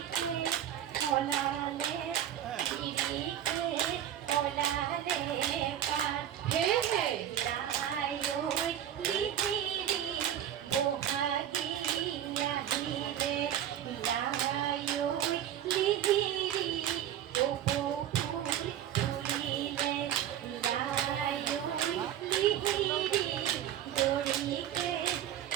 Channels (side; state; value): left; quieter; 10.7 dB